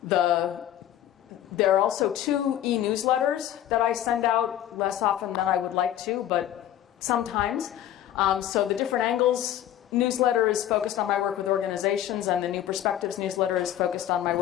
there are also 2 e-newsletters that I send out, less often than I would like to, but sometimes. So the Different Angles newsletter is focused on my work with organizations, and the New Perspectives newsletter is focused on my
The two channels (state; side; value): quieter; right; 11.8 dB